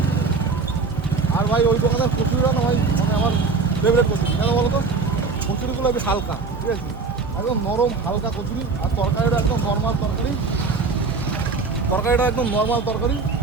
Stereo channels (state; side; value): quieter; left; 4.4 dB